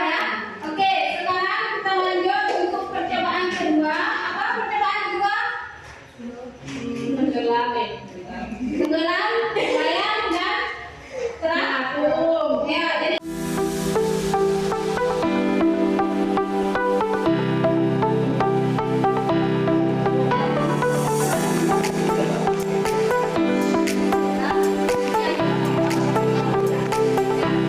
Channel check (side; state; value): both; identical; correlation 1.00